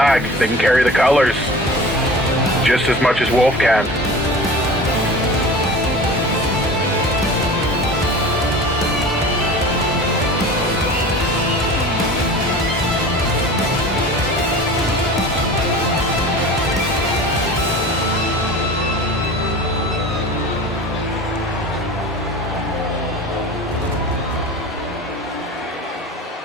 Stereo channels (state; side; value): normal; both; correlation 0.37